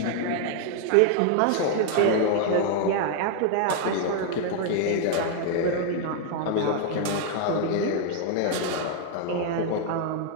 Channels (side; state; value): both; different; correlation 0.00